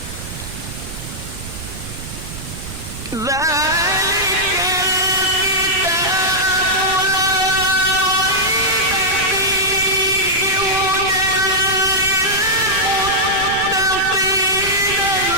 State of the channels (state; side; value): noise; right; rumble, 12 dB below the sound